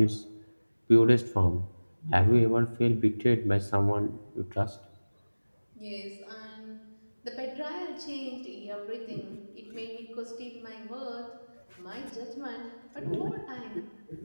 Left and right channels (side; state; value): both; inverted; correlation -1.00